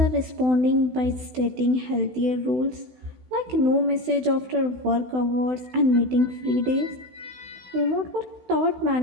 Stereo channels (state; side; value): late; left; 16 ms